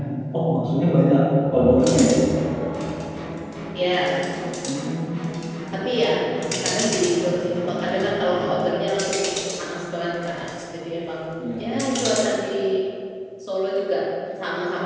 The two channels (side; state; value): both; identical; correlation 1.00